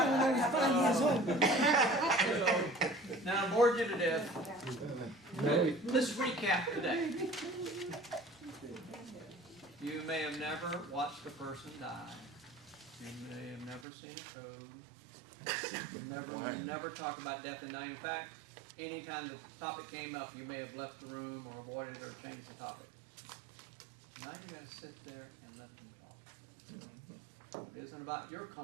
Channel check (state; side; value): drops out; left; at 13.9 s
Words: when I was 5 years old. Now, I bored you to death. Let's recap today. You may have never watched a person die. You may have never seen a code. You never talk about death and dying. In fact, anytime the topic came up, you may have left the room or avoided or changed the topic. Now you got to sit there and let them talk. It isn't about your